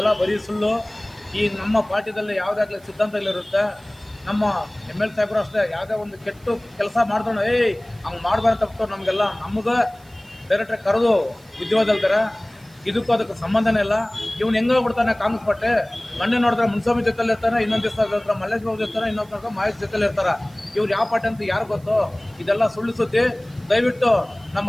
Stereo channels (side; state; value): right; noise; hiss, 28 dB below the sound